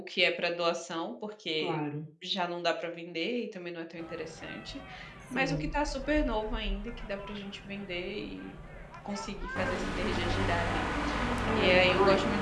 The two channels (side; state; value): both; identical; correlation 1.00